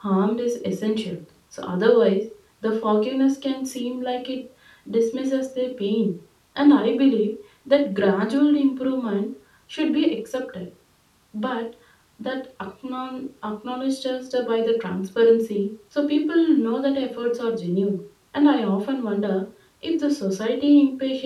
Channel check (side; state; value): both; identical; correlation 1.00